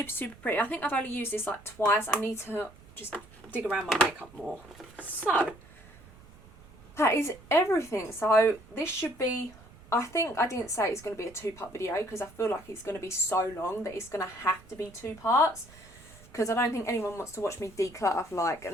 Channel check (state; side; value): noise; right; rumble, 22 dB below the sound